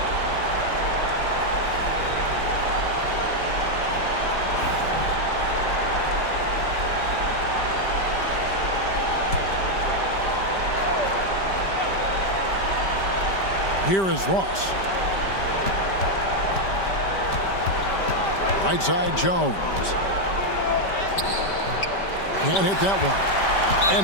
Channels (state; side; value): late; right; 5.1 ms